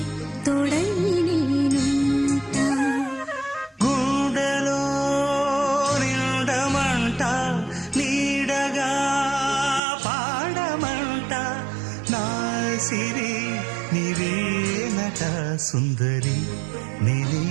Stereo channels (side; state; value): left; drops out; at 9.8 s